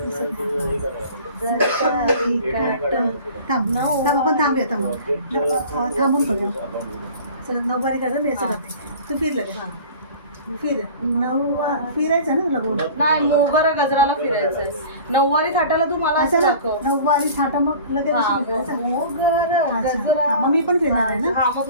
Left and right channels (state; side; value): inverted; both; correlation -0.42